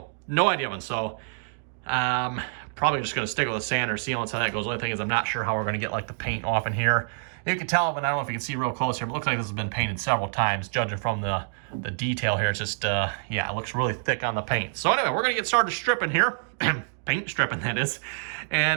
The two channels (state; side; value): silent; left; digital silence